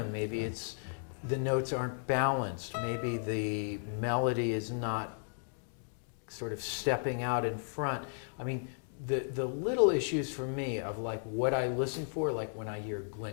Maybe it's the notes aren't balanced. Maybe the melody is not sort of stepping out in front. I mean, the little issues for me of like what I listen for, like when I hear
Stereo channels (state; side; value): silent; right; digital silence